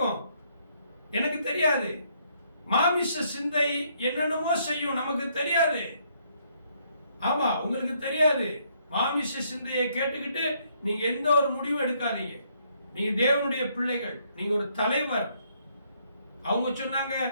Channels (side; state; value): both; inverted; correlation -0.70